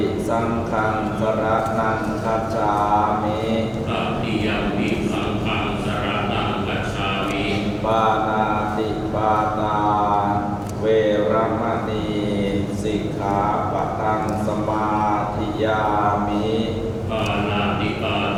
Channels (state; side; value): identical; both; correlation 1.00